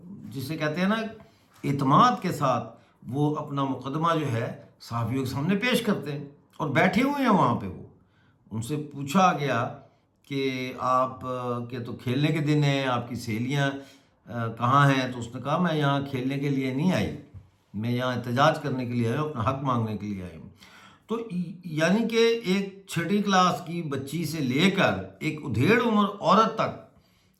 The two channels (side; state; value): both; identical; correlation 1.00